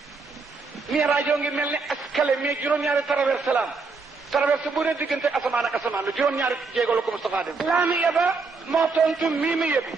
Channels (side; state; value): left; quieter; 4.3 dB